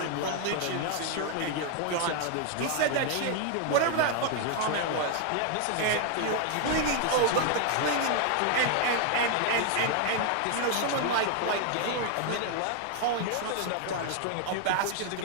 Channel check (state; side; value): different; both; correlation 0.00